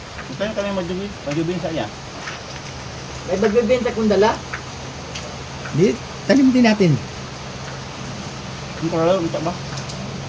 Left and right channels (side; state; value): both; identical; correlation 1.00